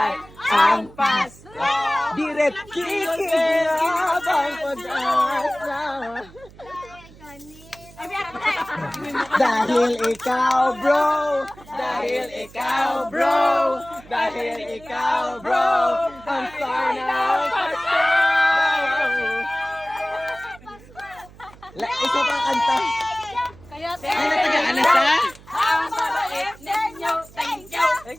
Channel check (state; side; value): noise; right; hum, 22 dB below the sound